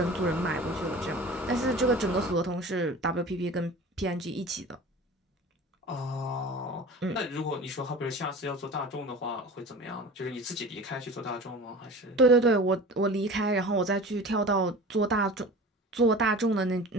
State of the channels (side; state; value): both; normal; correlation 0.38